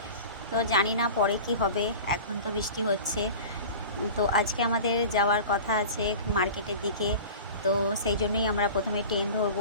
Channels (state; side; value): inverted; both; correlation -0.36